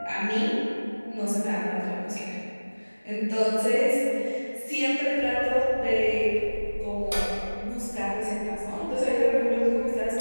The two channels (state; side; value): inverted; both; correlation -1.00